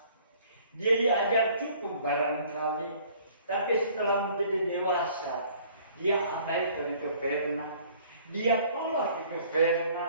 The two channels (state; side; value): inverted; both; correlation -0.55